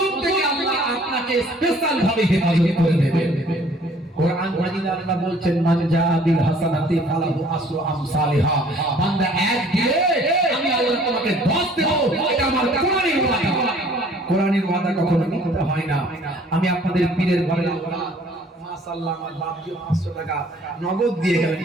থেকে আল্লাহ আপনাকে স্পেশাল ভাবে হেফাজত করে দেবেন। কোরআন মাজিদে আল্লাহ বলছেন, মান জাআ বিল হাসানাতি ফালাহু আসরু আমসালিহা। বান্দা এক দিলে আমি আল্লাহ তোমাকে 10 দেব, এটা আমার কোরআনের ওয়াদা। কোরআনের ওয়াদা কখনো মিথ্যা হয় না। আমি আপনাদের পীরের ঘরে মাশাআল্লাহ আমার বাপজি 500 টাকা নগদ দিয়ে গেলেন।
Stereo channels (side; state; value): both; normal; correlation 0.56